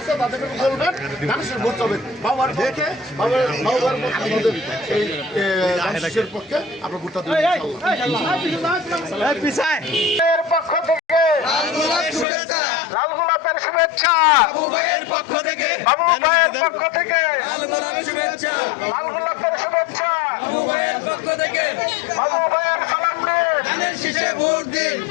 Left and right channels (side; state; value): right; drops out; at 12.2 s